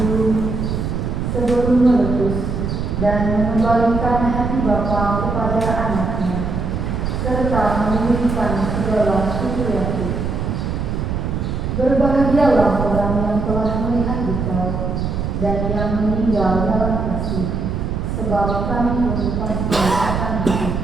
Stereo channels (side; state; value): right; noise; rumble, 2 dB below the sound